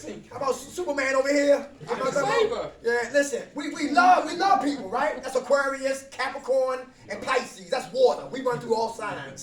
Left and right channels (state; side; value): identical; both; correlation 1.00